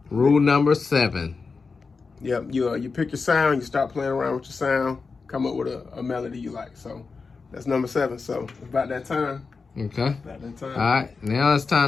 rule number 7. Yep. You pick your sound, you start playing around with your sound, come up with a melody you like. So that's number 7. So it's about that time. Okay. About that time. All right. Now it's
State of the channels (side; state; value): right; quieter; 4.6 dB